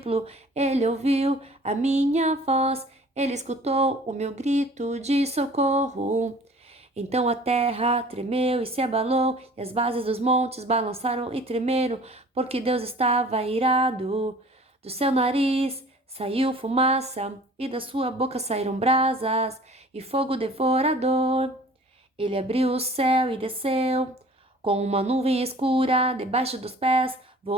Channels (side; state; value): both; normal; correlation 0.48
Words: Ele ouviu a minha voz, Ele escutou o meu grito de socorro. Então a terra tremeu e se abalou, e as bases dos montes balançaram e tremeram, porque Deus estava irado. Do seu nariz saiu fumaça, e da sua boca saíram brasas e fogo devorador. Ele abriu o céu e desceu, com uma nuvem escura debaixo dos pés,